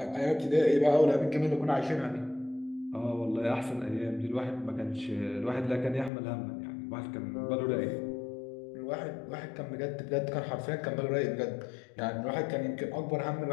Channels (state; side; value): drops out; right; at 6.1 s